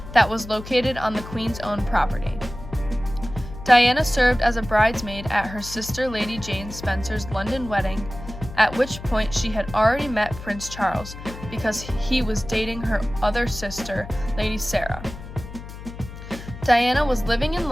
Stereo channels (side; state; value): left; noise; hum, 13 dB below the sound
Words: that was located on the Queen's own property. Diana served as a bridesmaid at her sister Lady Jane Spencer's London wedding, at which point she had already met Prince Charles because he was dating her other sister, Lady Sarah. Diana was living in